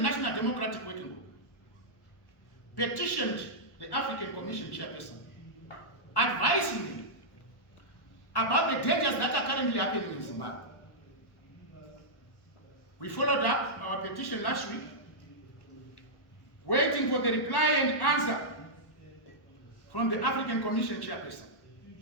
Democratic Working Group, petitioned the African Commission chairperson, advising him about the dangers that are currently happening in Zimbabwe. We followed up our petition last week, waiting for the reply and answer from the African Commission chairperson.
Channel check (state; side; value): late; right; 1.1 ms